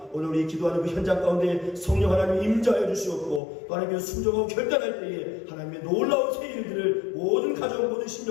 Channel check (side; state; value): right; drops out; at 3.4 s